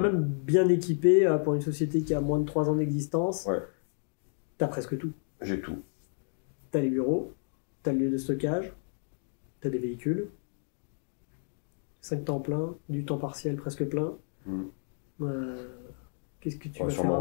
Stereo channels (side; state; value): right; silent; 57 dB below the other